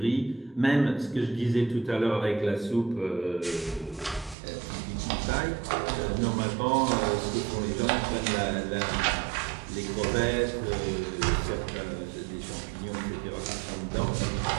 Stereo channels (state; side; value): drops out; left; at 4.4 s